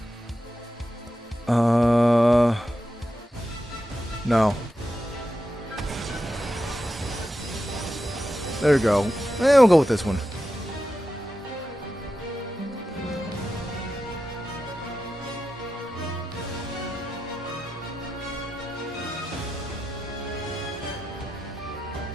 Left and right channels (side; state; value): both; normal; correlation 0.90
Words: No. There we go. We'll go with this one.